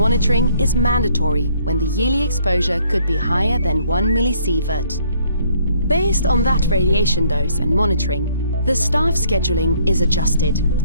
is mandatory when the yearly exposure could be higher than 1 millisievert. Based on that radiation dose and monitoring, the staff scheduling is adjusted,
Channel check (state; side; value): inverted; both; correlation -0.64